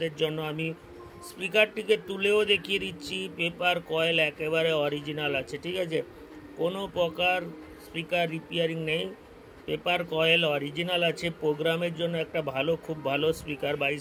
জন্য আমি স্পিকারটিকে তুলেও দেখিয়ে দিচ্ছি, পেপার কয়েল একেবারে অরিজিনাল আছে, ঠিক আছে। কোনো প্রকার স্পিকার রিপেয়ারিং নেই, পেপার কয়েল অরিজিনাল আছে। প্রোগ্রামের জন্য একটা খুব ভালো স্পিকার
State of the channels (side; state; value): both; identical; correlation 1.00